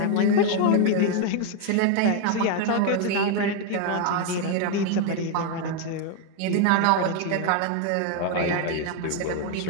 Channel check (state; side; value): different; both; correlation 0.00